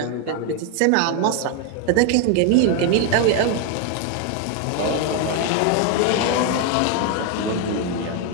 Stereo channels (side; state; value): both; different; correlation 0.01